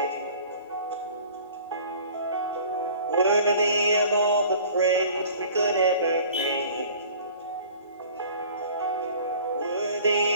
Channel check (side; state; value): both; inverted; correlation -0.47